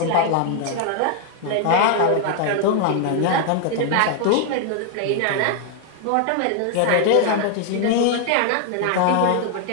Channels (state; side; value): different; both; correlation 0.00